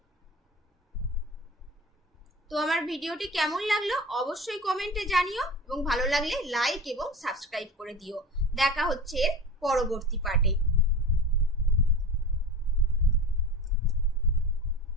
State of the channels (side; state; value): both; normal; correlation 0.33